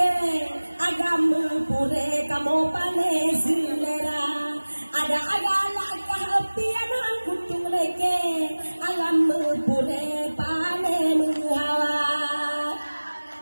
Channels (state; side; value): inverted; both; correlation -1.00